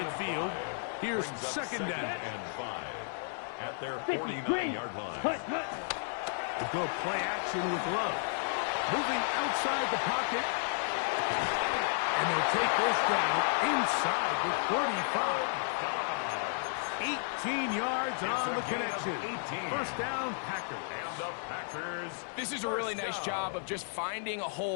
Here's second down. And 5 at their 49-yard line. To go play action with Love. Moving outside the pocket. And they'll take this down inside the 45. 18 yards on the connection. First down, Packers. And the Packers. This is a really nice job of just finding a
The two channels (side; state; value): right; silent; digital silence